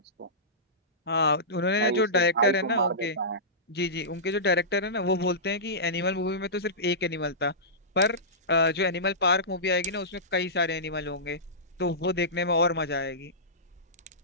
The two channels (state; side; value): normal; both; correlation -0.18